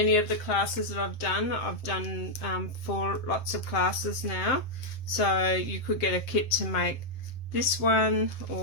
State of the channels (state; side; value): late; right; 7.6 ms